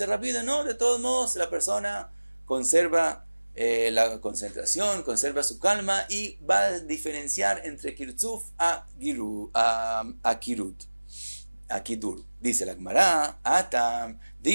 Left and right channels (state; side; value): inverted; both; correlation -1.00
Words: rápido, no, de todos modos la persona conserva la concentración, conserva su calma y va a diferenciar entre kirtzuf a kirut. A kidur. Dice la Gemara, Atam,